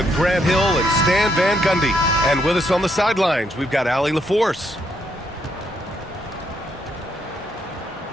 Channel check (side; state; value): both; normal; correlation 0.75